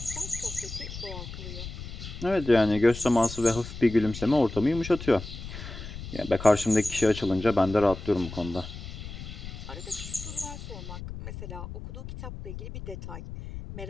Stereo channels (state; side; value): noise; left; rumble, 10 dB below the sound